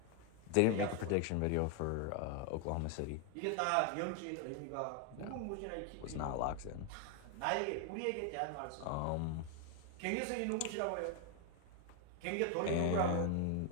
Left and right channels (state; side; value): different; both; correlation 0.00